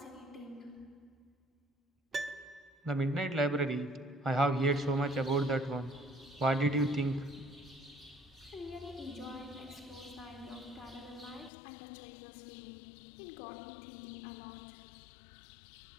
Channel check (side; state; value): right; drops out; at 11.5 s